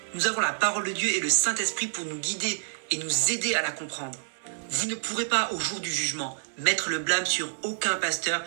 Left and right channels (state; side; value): silent; left; digital silence